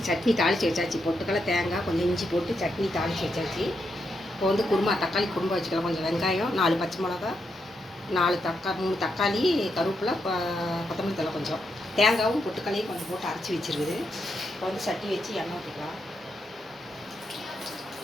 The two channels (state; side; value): normal; both; correlation 0.82